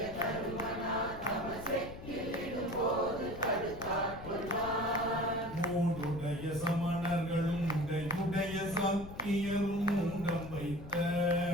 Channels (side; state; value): left; noise; rumble, 13 dB below the sound